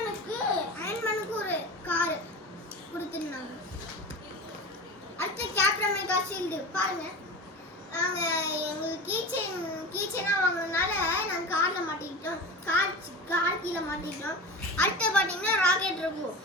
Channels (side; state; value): both; normal; correlation 0.30